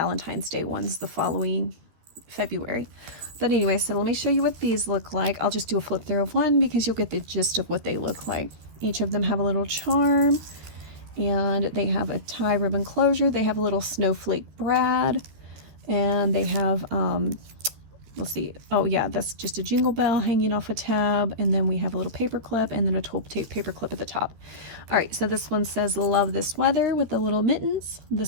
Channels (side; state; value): left; late; 13 ms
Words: Day ones the following February. But anyway, so let me show you what these look like. I'll just do a flip through of one because you'll get the gist of what they look like. Each of them have a little charm, and they have a tie ribbon closure. They have a little snowflake brad, and they have let's see, oh yeah, that's just a jingle bell hanging off a tab, and then we have a little paper clip and then a 12 tape paper clip at the top. All right, so this one says love this weather with the little mittens.